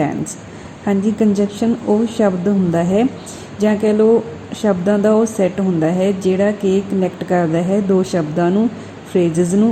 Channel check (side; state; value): both; identical; correlation 1.00